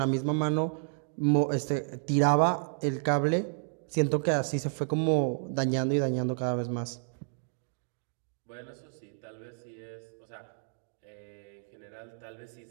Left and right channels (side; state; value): left; silent; digital silence